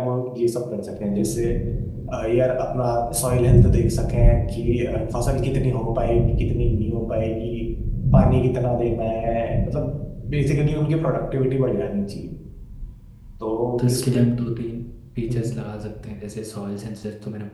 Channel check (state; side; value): identical; both; correlation 1.00